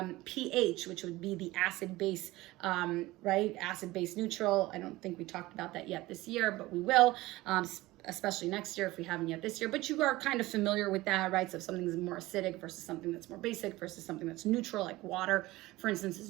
pH, which would be the acid-base, right? Acid-base neutral. I don't think we talked about that yet this year, but we will. Especially next year if we haven't yet this year, but you are kind of familiar with that, right? So if something's more acidic versus something that's more basic versus something that's neutral, like water, for instance, is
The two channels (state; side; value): quieter; left; 18.9 dB